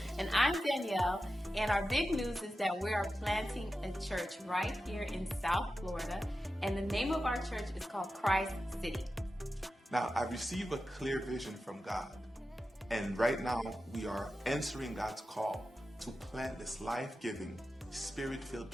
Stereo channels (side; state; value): both; normal; correlation 0.92